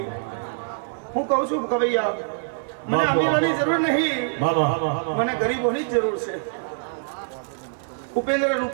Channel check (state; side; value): silent; left; digital silence